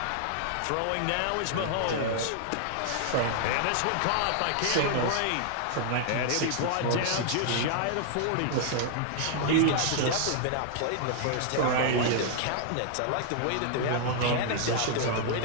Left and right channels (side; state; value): both; different; correlation -0.01